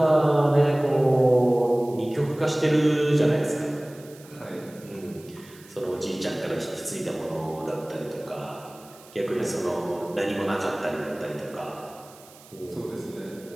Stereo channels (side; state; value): right; noise; hiss, 23 dB below the sound